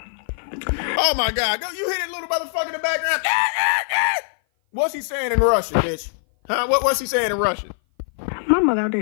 Oh my God. You hear that little motherfucker in the background? What's he saying in Russian, bitch? Huh? What's he saying in Russian? My mother out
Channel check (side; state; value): right; silent; 57 dB below the other